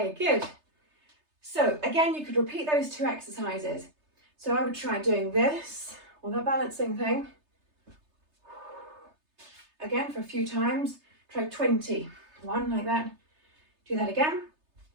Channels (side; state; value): left; late; 3.3 ms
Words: good. So again, you could repeat those 2 exercises. So I would try doing this or the balancing thing. Again, for a few times, try 20. One like that. Do that again.